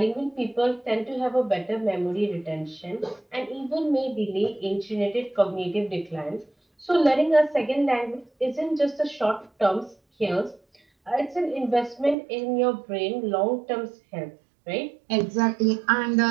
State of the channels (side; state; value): left; drops out; at 12.2 s